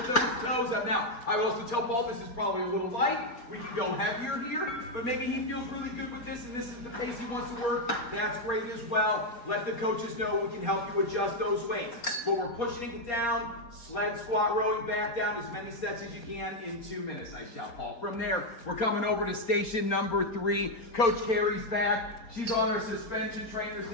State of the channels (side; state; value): right; late; 4.3 ms